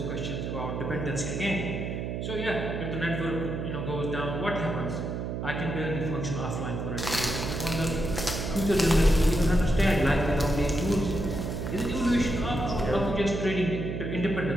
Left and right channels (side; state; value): right; noise; hum, 3 dB below the sound